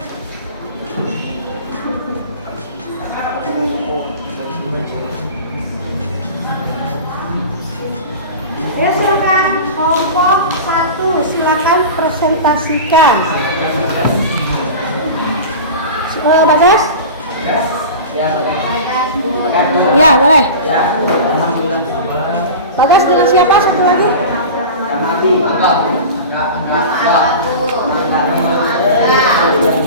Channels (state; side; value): inverted; both; correlation -0.32